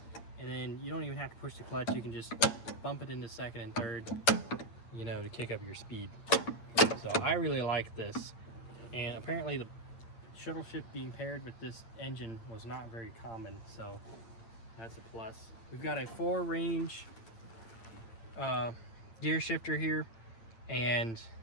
and then you don't even have to push the clutch. You can just bump it into second and third, you know, to kick up your speed. So I really like this, and apparently the shuttle shift being paired with this engine was not very common, so that's a plus. We've got a 4-range gear shifter here, and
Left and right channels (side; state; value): right; late; 8.8 ms